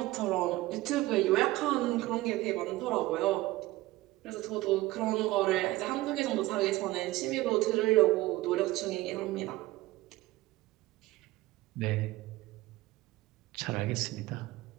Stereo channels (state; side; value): quieter; left; 18.4 dB